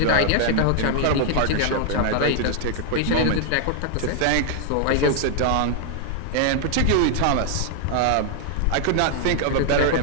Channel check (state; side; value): different; both; correlation 0.00